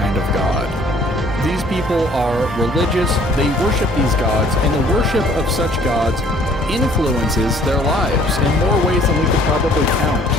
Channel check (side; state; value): both; normal; correlation 0.57